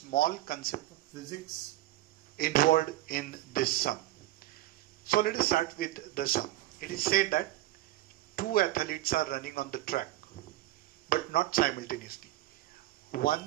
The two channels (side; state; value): left; quieter; 16.1 dB